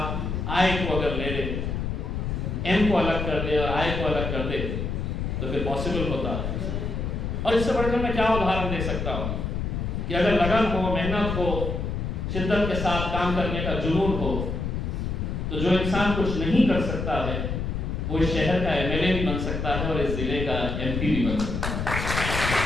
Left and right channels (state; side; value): noise; left; rumble, 2 dB below the sound